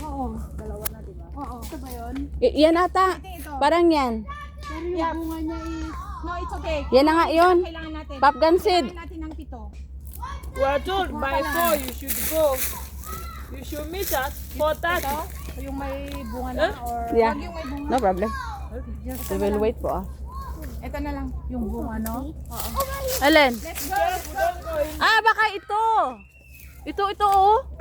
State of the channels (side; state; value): both; identical; correlation 1.00